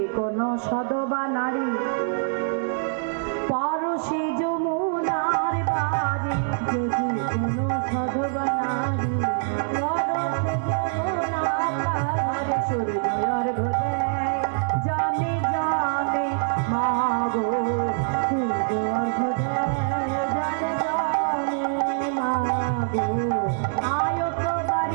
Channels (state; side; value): silent; left; 59 dB below the other